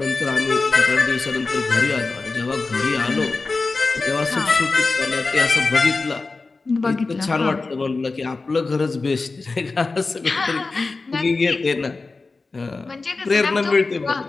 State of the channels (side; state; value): right; quieter; 3.8 dB